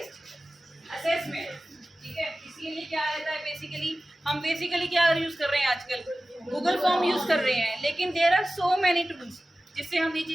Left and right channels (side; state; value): both; normal; correlation 0.96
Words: assessment, ठीक है। इसीलिए क्या रहता है, बेसिकली क्या यूज कर रहे हैं आजकल, गूगल फॉर्म यूज कर रहे हैं, लेकिन there are so many tools जिससे हम ये